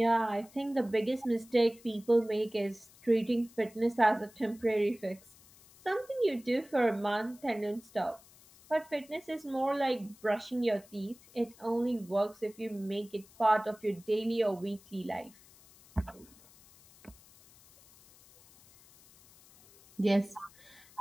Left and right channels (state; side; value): noise; left; hiss, 25 dB below the sound